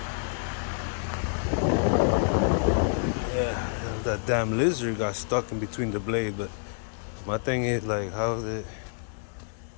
yeah, that damn lizard got stuck in between the blade. But my thing is, like, how is it?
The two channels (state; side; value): silent; right; 59 dB below the other